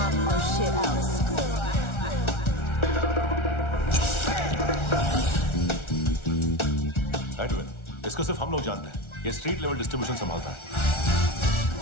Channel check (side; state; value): right; late; 1.4 ms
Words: up or shit out. Edwin, इसको सिर्फ हम लोग जानते हैं। ये स्ट्रीट लेवल डिस्ट्रीब्यूशन संभालता है,